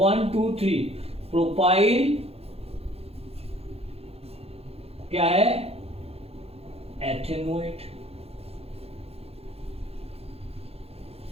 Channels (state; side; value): late; left; 0.29 ms